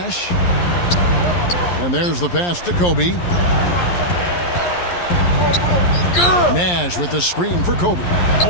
And there's the pass to Kobe. Nash with the screen for Kobe.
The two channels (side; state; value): right; late; 11 ms